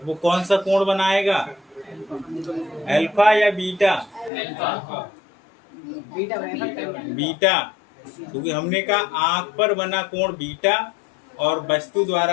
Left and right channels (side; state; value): right; drops out; at 4.3 s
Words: कौन सा कोण बनाएगा? अल्फा या बीटा? बीटा बनेगा। बीटा, क्योंकि हमने कहा आंख पर बना कोण बीटा और वस्तु